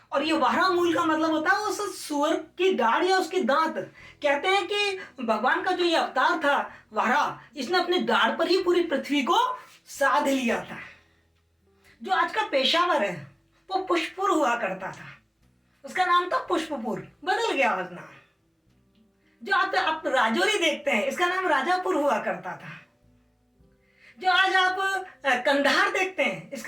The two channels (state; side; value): identical; both; correlation 1.00